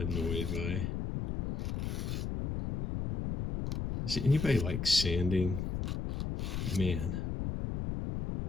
by. Does anybody like sanding? Man.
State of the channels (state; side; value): noise; left; rumble, 2 dB below the sound